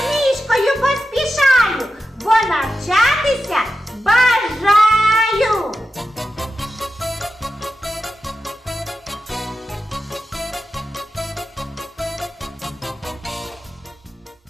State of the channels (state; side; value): normal; both; correlation 0.91